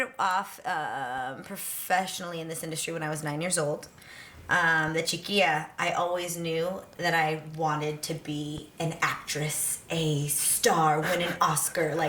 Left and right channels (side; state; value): both; identical; correlation 1.00